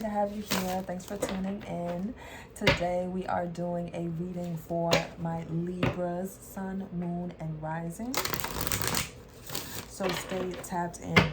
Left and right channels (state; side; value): identical; both; correlation 1.00